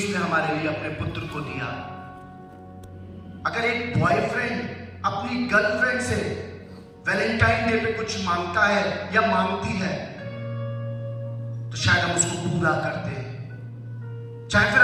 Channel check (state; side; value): identical; both; correlation 1.00